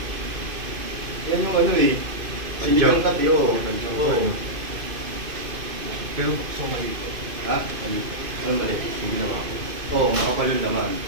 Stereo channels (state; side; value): late; left; 2.5 ms